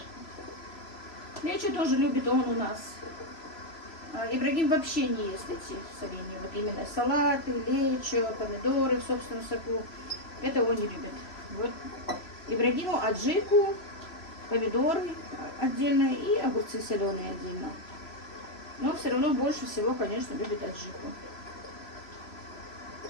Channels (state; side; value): late; right; 3.0 ms